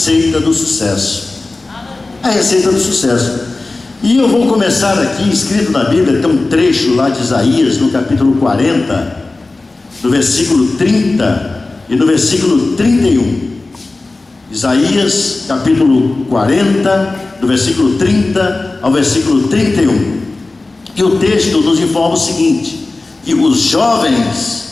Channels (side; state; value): right; quieter; 3.3 dB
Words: do sucesso. A receita do sucesso. E eu vou começar aqui, escrito na Bíblia, tem um trecho lá de Isaías, no capítulo 40, do versículo 30 e no versículo 31. Isaías, capítulo 40, do versículo 30 ao versículo 31. E o texto nos informa o seguinte: que os jovens